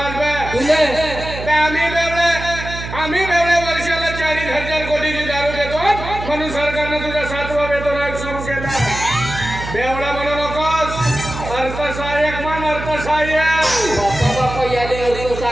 बे? तुझे बे आम्ही बेवडे वर्षाला 40,000 कोटीची दारू देतो म्हणून सरकारनं तुझा 7वा वेतन आयोग सुरू केला. बेवडा म्हणू नकोस. अर्थसहाय्यक म्हण अर्थसहाय्यक. बापा याले अर्थ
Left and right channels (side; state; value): right; noise; hum, 9 dB below the sound